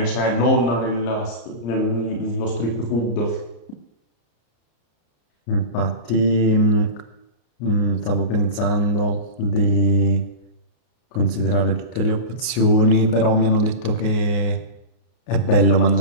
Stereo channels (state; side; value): late; right; 33 ms